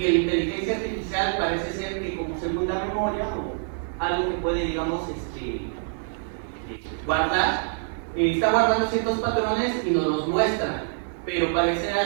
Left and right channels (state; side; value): silent; left; 58 dB below the other